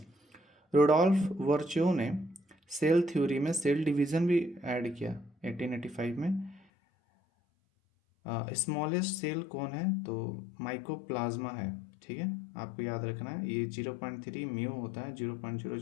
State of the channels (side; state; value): right; drops out; at 6.6 s